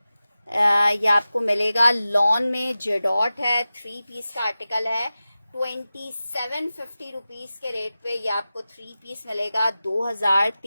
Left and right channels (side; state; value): both; inverted; correlation -0.94